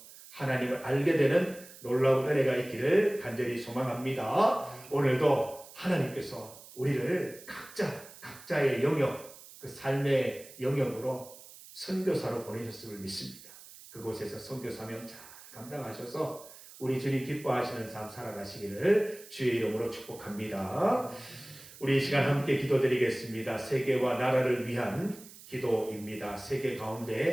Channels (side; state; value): right; noise; hiss, 18 dB below the sound